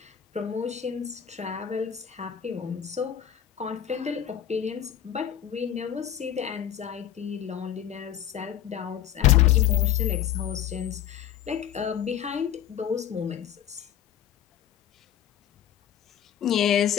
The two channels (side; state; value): right; quieter; 10.4 dB